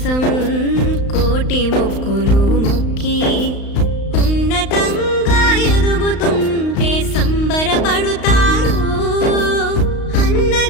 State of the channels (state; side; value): late; right; 35 ms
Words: కోటి మొక్కులు మొక్కి ఉన్నతంగా ఎదుగుతుంటే సంబరపడుతారు.